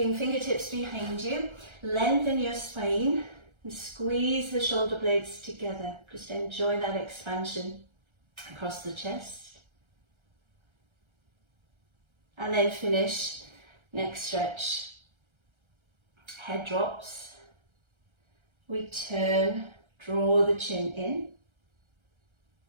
fingertips behind you, lengthen your spine and squeeze the shoulder blades together. Just enjoy that expansion across the chest. And then finish, next stretch, head drops. We turn, draw the chin in.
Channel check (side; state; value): left; late; 1.3 ms